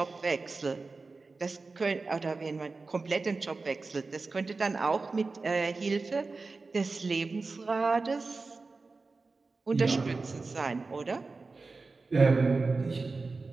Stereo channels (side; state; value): left; quieter; 3.9 dB